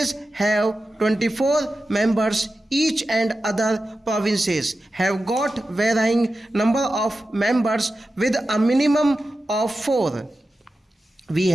have 24 members each, and other provinces have got varying number of members with a minimum of 4. We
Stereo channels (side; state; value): both; normal; correlation 0.93